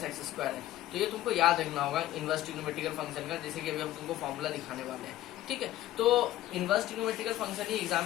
- x स्क्वायर है। तो ये तुमको याद रखना होगा इनवर्स ट्रिग्नोमेट्रिकल फंक्शन का, जैसे कि अभी हम तुमको फॉर्मूला दिखाने वाले हैं। ठीक है, तो इनवर्स ट्रिग्नोमेट्रिकल फंक्शन ही एग्जाम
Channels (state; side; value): quieter; right; 14.4 dB